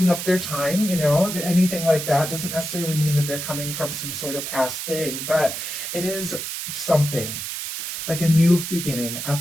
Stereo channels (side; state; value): right; noise; hiss, 5 dB below the sound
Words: up their time, anything like that. Doesn't necessarily mean that they're coming from some sort of past thing, but it is something like a new beginning, a